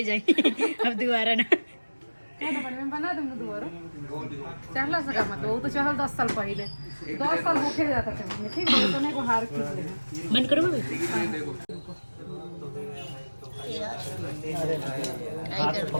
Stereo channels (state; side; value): inverted; both; correlation -1.00